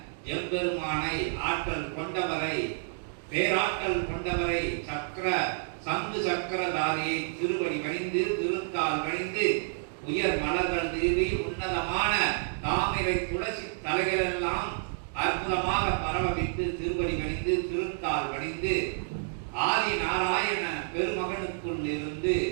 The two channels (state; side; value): silent; left; digital silence